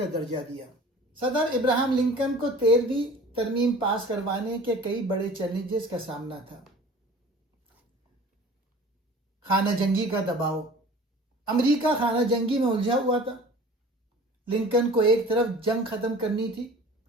درجہ دیا. صدر ابراہم لنکن کو 13ویں ترمیم پاس کروانے کے کئی بڑے چیلنجز کا سامنا تھا. خانہ جنگی کا دباؤ. امریکہ خانہ جنگی میں الجھا ہوا تھا. لنکن کو ایک طرف جنگ ختم کرنی تھی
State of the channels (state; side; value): normal; both; correlation 0.44